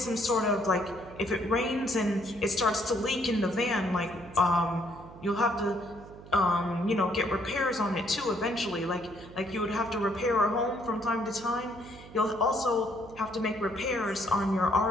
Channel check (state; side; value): noise; right; hum, 17 dB below the sound